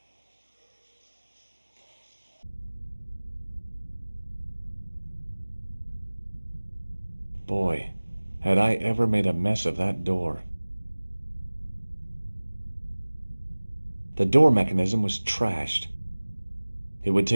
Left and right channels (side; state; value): both; inverted; correlation -1.00